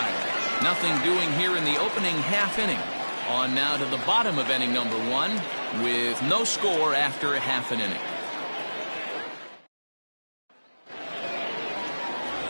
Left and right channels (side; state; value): both; inverted; correlation -1.00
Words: Nothing doing here in the opening half inning. On now to the bottom of inning number 1 with no score after a half an inning.